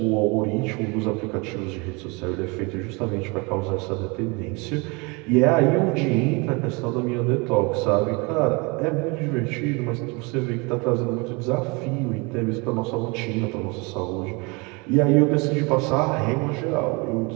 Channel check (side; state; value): left; quieter; 28.6 dB